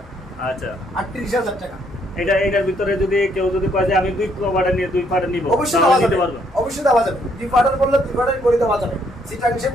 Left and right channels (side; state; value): both; normal; correlation 0.70